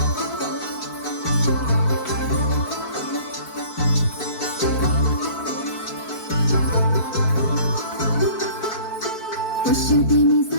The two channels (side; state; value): right; late; 4.6 ms